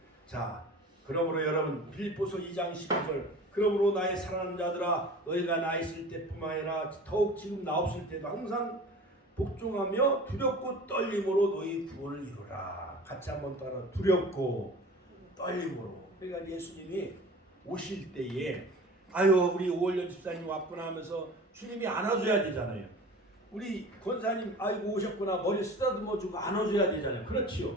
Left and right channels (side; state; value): both; normal; correlation 0.40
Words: 자, 그러므로 여러분 빌립보서 2장 12절 그러므로 나의 사랑하는 자들아 너희가 나 있을 때뿐만 아니라 더욱 지금 나 없을 때도 항상 복종하며 두렵고 떨림으로 너희 구원을 이루라. 같이 한번 따라 두렵고 떨림으로. 그러니까 예수님이 오실 때에 아유 우리 오월년 집사님 왔구나 하면서 주님이 안아줘야 되잖아요. 우리 권사님 아이고 오셨구나 머리 쓰다듬어주고 안아줘야 되잖아요. 그렇지요.